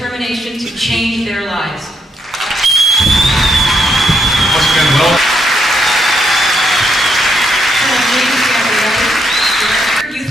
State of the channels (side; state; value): both; normal; correlation 0.76